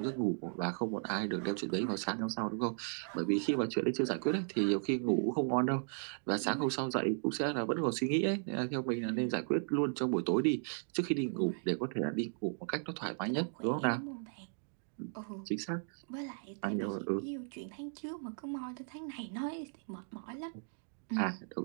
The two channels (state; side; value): silent; left; digital silence